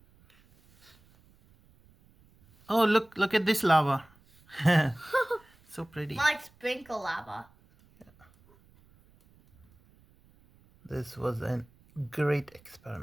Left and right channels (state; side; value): noise; right; rumble, 30 dB below the sound